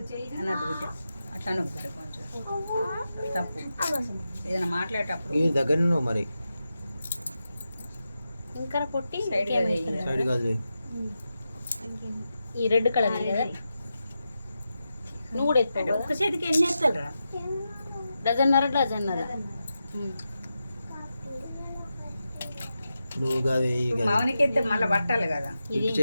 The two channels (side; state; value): both; inverted; correlation -0.89